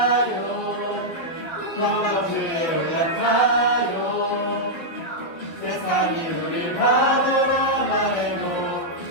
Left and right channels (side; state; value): right; late; 12 ms